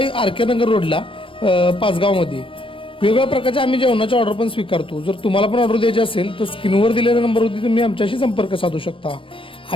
आरके नगर रोडला पाचगावमध्ये. वेगवेगळ्या प्रकारच्या आम्ही जेवणाच्या ऑर्डर पण स्वीकारतो. जर तुम्हाला पण ऑर्डर द्यायची असेल तर स्क्रीनवर दिलेल्या नंबरवरती तुम्ही आमच्याशी संपर्क साधू शकता.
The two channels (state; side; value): late; right; 0.25 ms